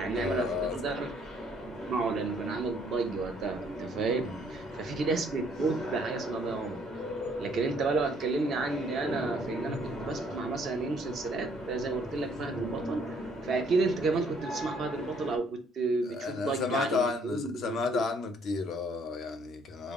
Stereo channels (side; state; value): both; normal; correlation 0.64